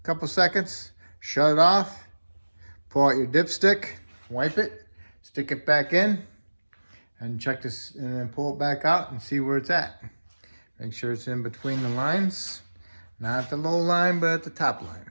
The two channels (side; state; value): both; inverted; correlation -1.00